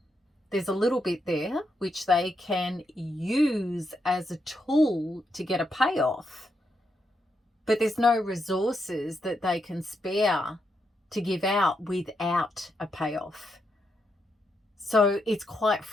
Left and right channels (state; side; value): normal; both; correlation 0.82